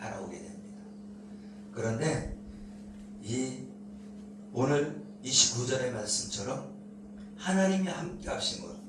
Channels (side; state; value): both; identical; correlation 1.00